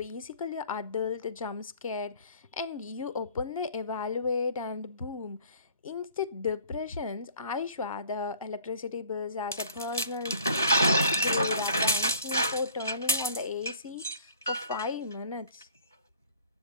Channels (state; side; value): inverted; both; correlation -0.51